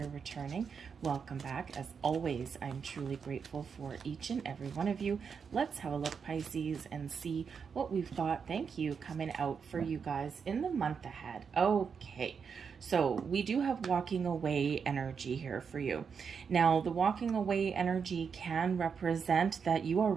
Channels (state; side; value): quieter; left; 6.3 dB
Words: returning, welcome back. As always, I'm truly grateful for each and every one of you. Let's have a look, Pisces, and see what we've got. Thank you, coming out for you guys in the month ahead. Okay. So we do have walking away energy here for you. Now, the walking away energy can represent that you are